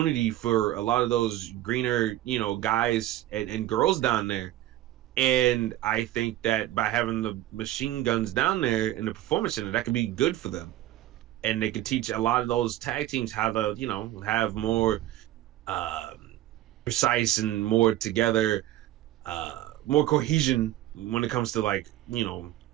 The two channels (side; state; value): left; quieter; 14.3 dB